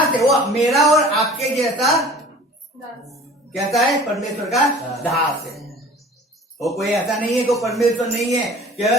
है, वो मेरा और आपके जैसा कैसा है? परमेश्वर का दास है। वो कोई ऐसा नहीं है कि परमेश्वर नहीं है कि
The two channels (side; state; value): both; normal; correlation 0.45